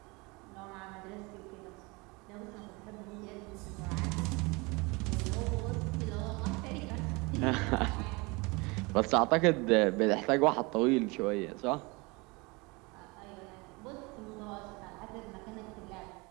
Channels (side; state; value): left; quieter; 26.6 dB